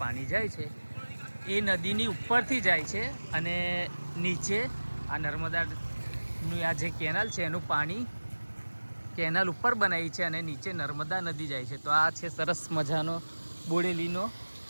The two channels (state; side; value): inverted; both; correlation -1.00